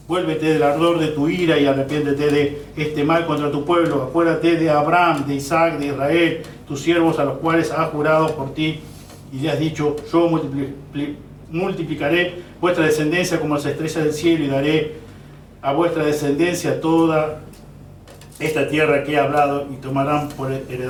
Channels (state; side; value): identical; both; correlation 1.00